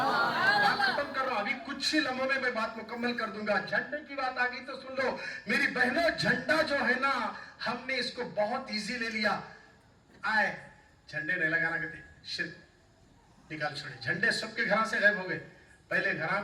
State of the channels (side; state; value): both; identical; correlation 1.00